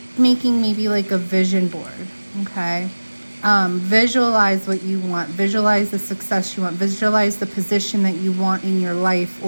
making maybe like a vision board. Okay. Visualize what you want, visualize the success you want, visualize the position that you want in your life,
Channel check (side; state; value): both; inverted; correlation -1.00